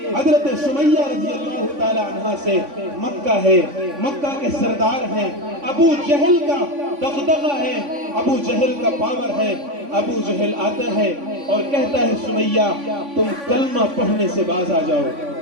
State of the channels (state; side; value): late; left; 3.5 ms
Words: حضرت سمیہ رضی اللہ تعالی عنہ سے۔ مکہ ہے، مکہ کے سردار ہیں، ابو جہل کا دغدغہ ہے، ابو جہل کا پاور ہے۔ ابو جہل آتا ہے اور کہتا ہے سمیہ تم کلمہ پڑھنے سے باز آ جاؤ،